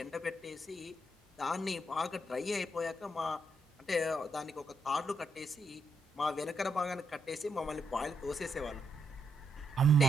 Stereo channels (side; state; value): both; normal; correlation 0.79